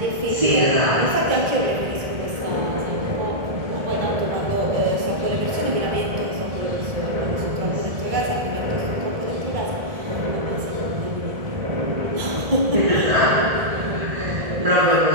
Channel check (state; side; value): late; left; 1.7 ms